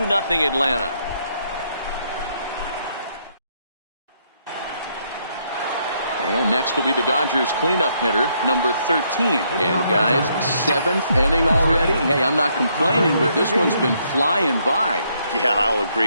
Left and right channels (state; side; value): inverted; both; correlation -0.73